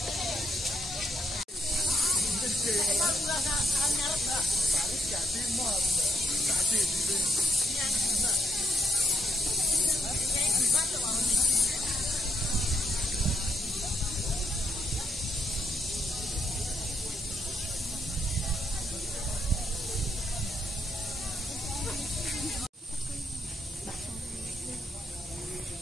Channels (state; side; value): normal; both; correlation 0.78